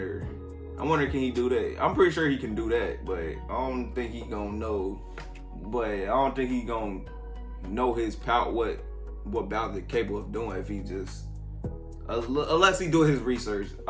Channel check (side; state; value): both; identical; correlation 1.00